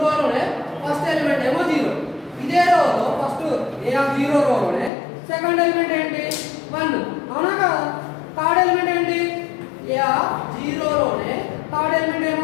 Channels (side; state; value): right; drops out; at 4.9 s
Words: ఫస్ట్ ఎలిమెంట్ ఏమో 0. ఇదే రోలో ఫస్ట్ A0 రోలోనే సెకండ్ ఎలిమెంట్ ఏంటి? 1. అవునా కదా? థర్డ్ ఎలిమెంట్ ఏంటి? A0 లోనే థర్డ్ ఎలిమెంట్